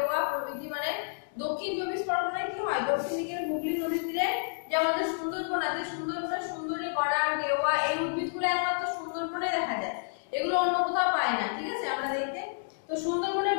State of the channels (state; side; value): silent; right; digital silence